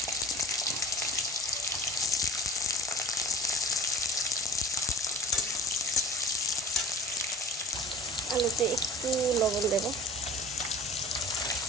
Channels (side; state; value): both; normal; correlation 0.43